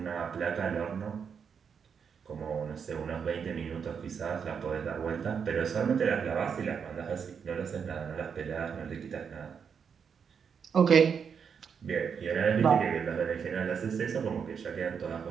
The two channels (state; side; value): quieter; left; 6.7 dB